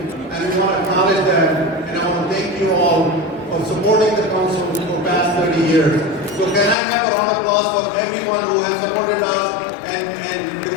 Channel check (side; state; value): right; drops out; at 6.8 s